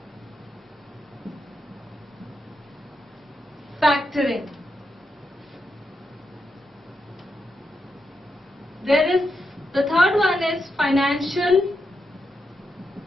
factoring. The third one is financial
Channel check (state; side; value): normal; both; correlation 0.85